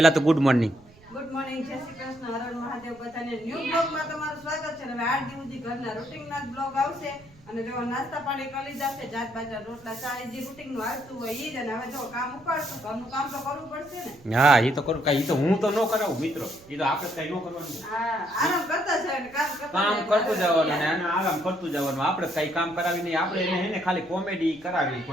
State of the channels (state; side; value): noise; right; rumble, 26 dB below the sound